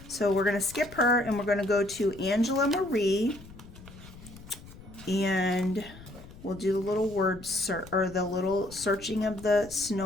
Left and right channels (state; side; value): noise; left; rumble, 18 dB below the sound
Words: So we're going to skip her and we're going to go to Angela Marie. And we'll do the little word search, or the little searching of the